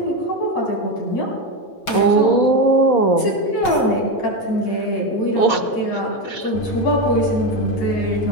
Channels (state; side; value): late; right; 6.2 ms